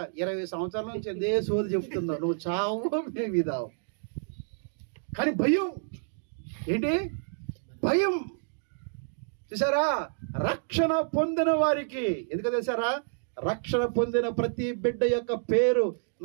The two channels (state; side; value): silent; left; digital silence